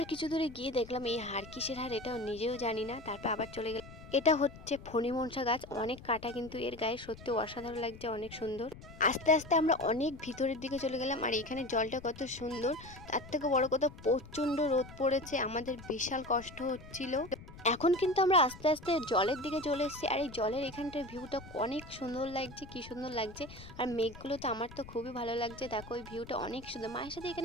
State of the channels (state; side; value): noise; left; rumble, 16 dB below the sound